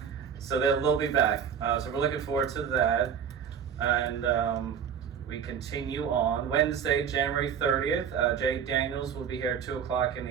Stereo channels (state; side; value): quieter; left; 7.7 dB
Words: So they'll be back. So we're looking forward to that. And we continue on Wednesday, January 30th. Jay Daniels will be here at 2 o'clock in